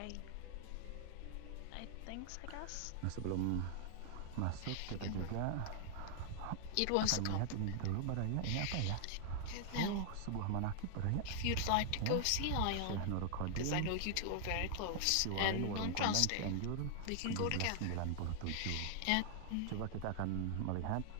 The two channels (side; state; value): both; different; correlation 0.00